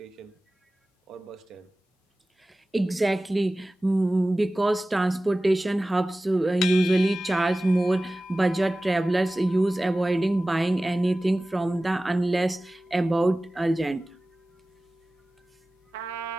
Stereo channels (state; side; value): normal; both; correlation 0.97